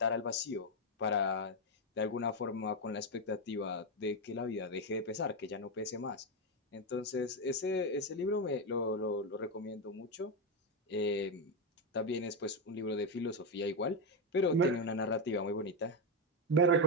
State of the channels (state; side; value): normal; both; correlation 0.07